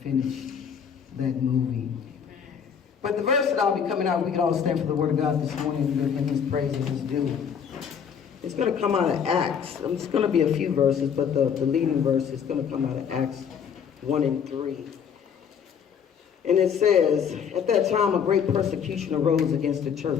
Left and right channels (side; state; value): right; quieter; 7.4 dB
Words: finished that movie. But the verse that I'll be coming out, we can all stand for the word of God this morning and give him his praise and his due. It's going to come out of Acts. It's going to be a few verses, but the leading verse is going to come out of Acts 1 and 3. And it says, at that time a great persecution arose against the